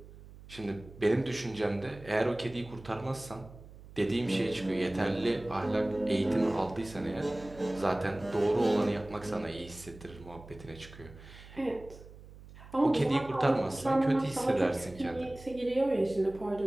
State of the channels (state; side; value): noise; right; hum, 18 dB below the sound